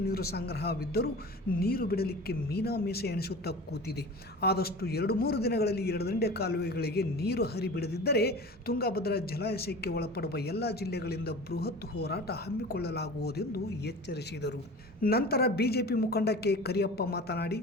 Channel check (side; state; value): both; normal; correlation 0.36